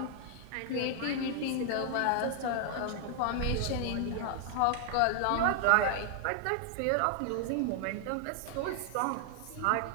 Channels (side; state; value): both; different; correlation 0.00